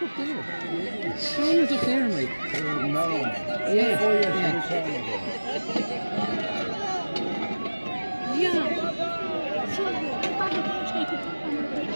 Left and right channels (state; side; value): inverted; both; correlation -1.00